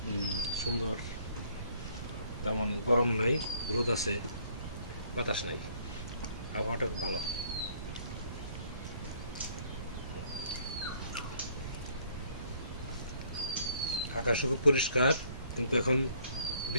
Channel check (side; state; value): both; inverted; correlation -0.62